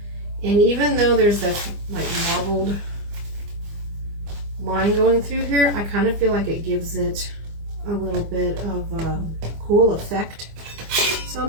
And even though there's that like marbled line going through here, I kind of feel like it gives it a little bit of a cool effect. So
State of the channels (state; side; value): late; left; 25 ms